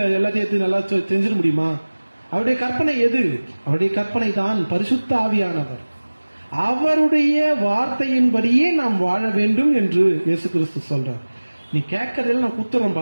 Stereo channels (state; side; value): inverted; both; correlation -1.00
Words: எல்லாத்தையும் நல்லா தெரிஞ்சிட முடியுமா? அவருடைய கற்பனை எது? அவருடைய கற்பனை தான் பரிசுத்த ஆவியானவர். அவருடைய வார்த்தையின்படியே நாம் வாழ வேண்டும் என்று இயேசு கிறிஸ்து சொல்றார். நீ கேட்கறதெல்லாம் நான்